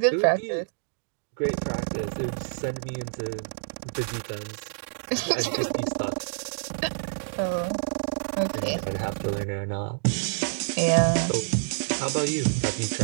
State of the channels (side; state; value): left; silent; digital silence